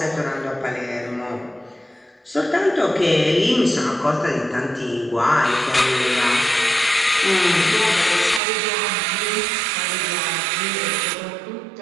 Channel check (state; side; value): drops out; left; at 8.4 s